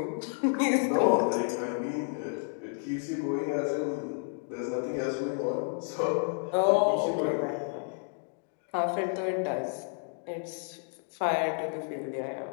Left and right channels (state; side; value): silent; right; 57 dB below the other